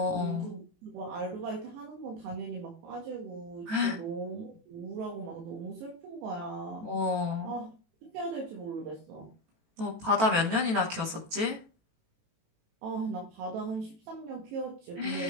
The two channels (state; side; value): late; left; 18 ms